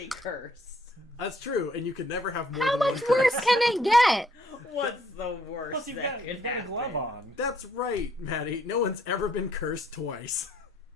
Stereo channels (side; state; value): both; normal; correlation 0.67